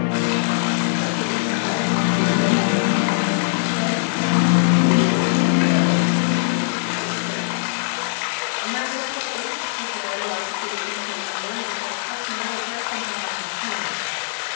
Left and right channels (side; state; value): right; silent; digital silence